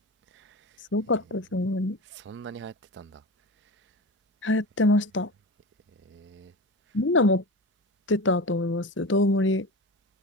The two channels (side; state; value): both; normal; correlation 0.28